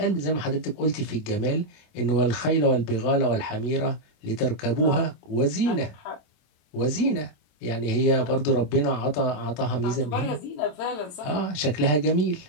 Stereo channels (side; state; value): right; late; 27 ms